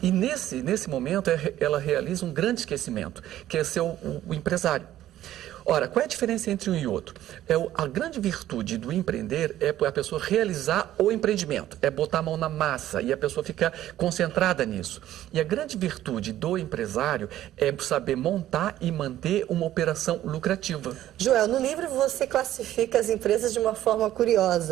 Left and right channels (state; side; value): quieter; left; 13.2 dB